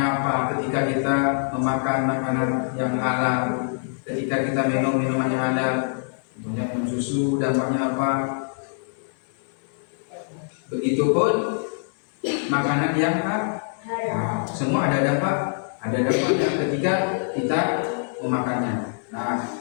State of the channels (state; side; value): silent; right; 62 dB below the other